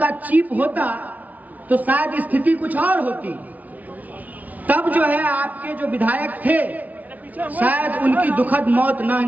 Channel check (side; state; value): left; late; 0.074 ms